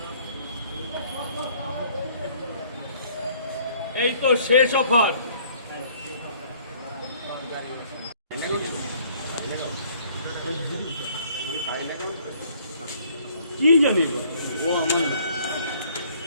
এই তো শেষ অফার। কি জানি ও আমার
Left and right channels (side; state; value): both; inverted; correlation -0.59